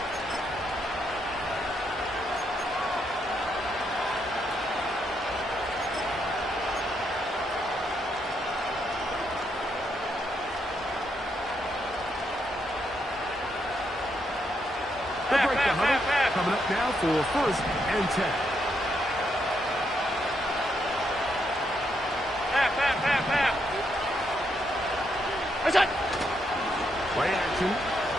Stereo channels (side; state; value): both; normal; correlation 0.78